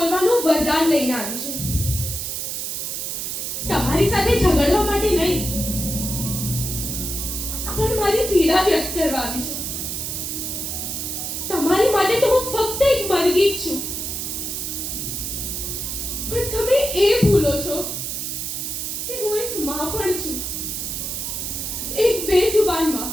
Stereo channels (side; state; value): right; noise; hiss, 4 dB below the sound